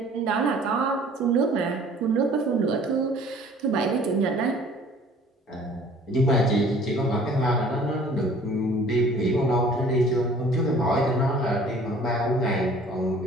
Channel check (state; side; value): normal; both; correlation 0.51